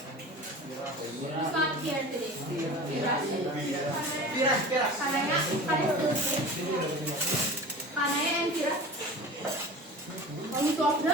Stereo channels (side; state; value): both; normal; correlation 0.36